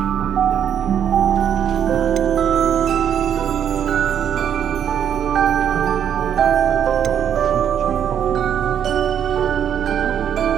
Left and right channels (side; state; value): left; quieter; 9.0 dB